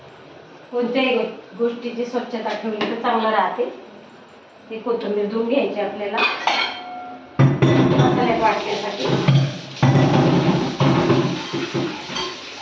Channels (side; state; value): both; identical; correlation 1.00